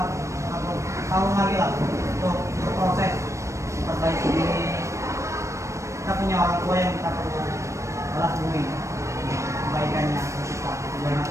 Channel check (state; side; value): late; left; 0.15 ms